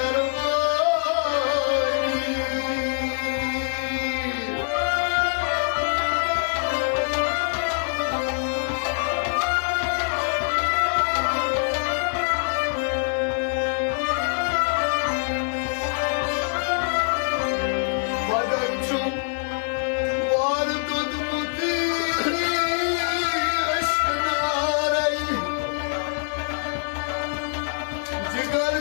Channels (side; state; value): right; silent; 60 dB below the other